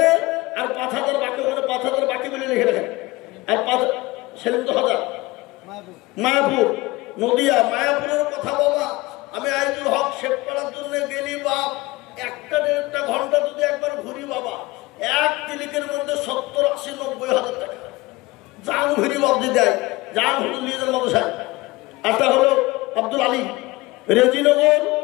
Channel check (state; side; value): quieter; right; 21.4 dB